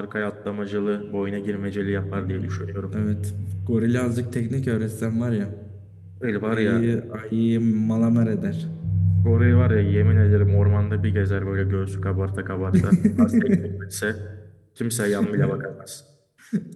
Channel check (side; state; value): both; identical; correlation 1.00